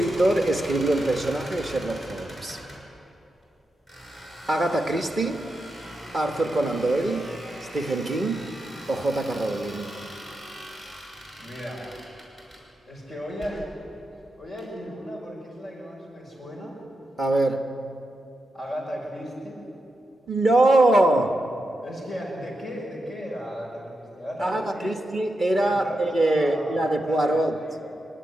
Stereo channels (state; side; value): normal; both; correlation 0.87